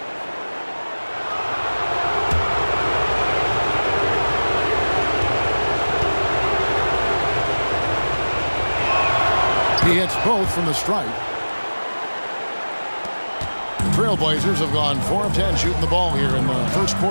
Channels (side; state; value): both; inverted; correlation -1.00